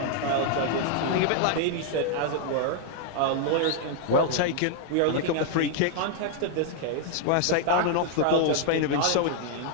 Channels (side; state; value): both; different; correlation 0.00